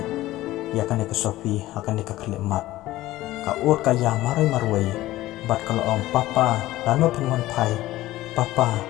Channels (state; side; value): quieter; right; 16.3 dB